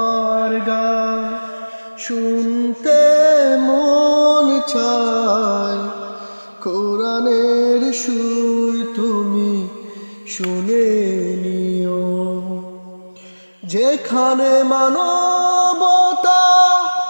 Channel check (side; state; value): both; inverted; correlation -1.00